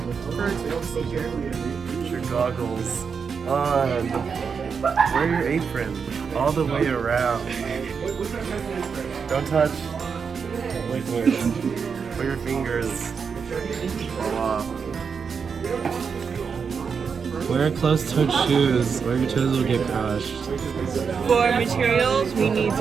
first procedure. Put your goggles on. Wear your apron all the way around. Don't touch liquid. Put your fingers all off. Wear closed-toed shoes or your toes will get crushed. For materials, we need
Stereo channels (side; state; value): left; quieter; 6.0 dB